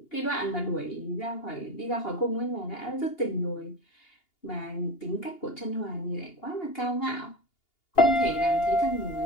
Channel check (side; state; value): right; late; 2.8 ms